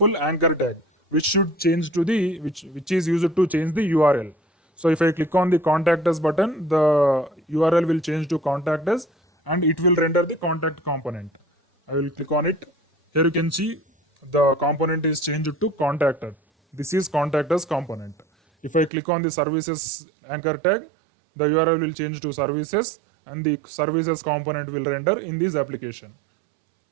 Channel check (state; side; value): drops out; left; at 18.9 s